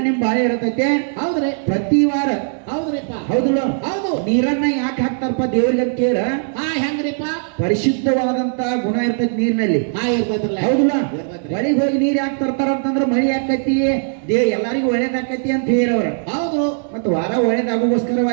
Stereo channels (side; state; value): left; silent; digital silence